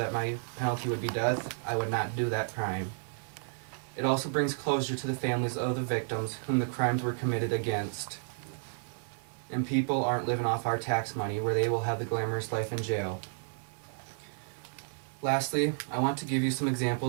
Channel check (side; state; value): left; silent; digital silence